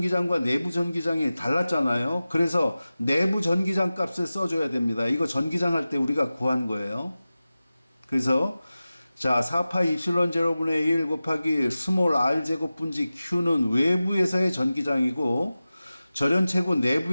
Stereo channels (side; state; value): both; inverted; correlation -0.95